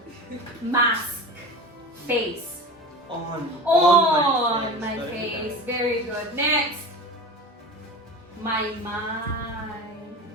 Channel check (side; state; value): both; normal; correlation 0.31